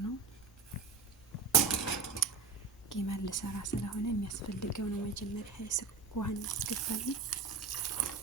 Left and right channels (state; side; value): quieter; left; 5.1 dB